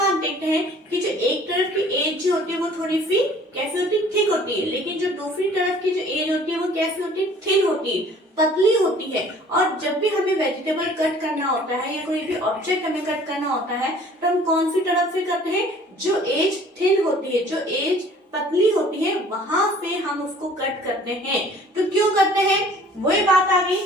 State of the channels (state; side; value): normal; both; correlation 0.52